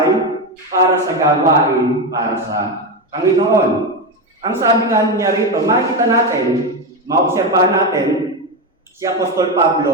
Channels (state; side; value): normal; both; correlation 0.13